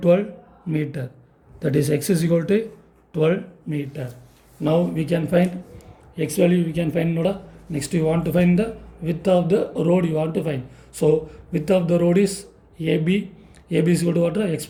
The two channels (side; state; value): both; identical; correlation 1.00